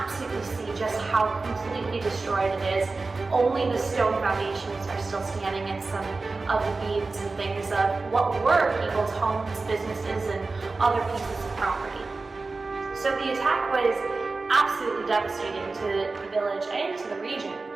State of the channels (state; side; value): quieter; left; 3.7 dB